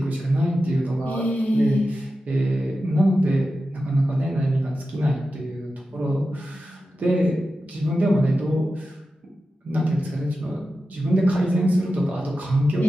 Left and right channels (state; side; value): normal; both; correlation 0.92